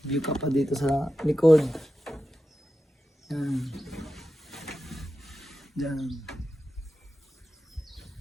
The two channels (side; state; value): both; normal; correlation 0.91